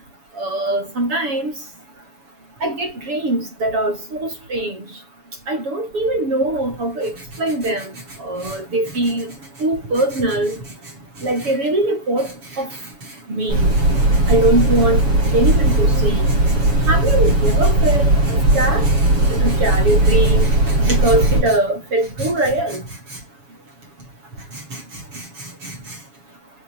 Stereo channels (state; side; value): late; left; 7.1 ms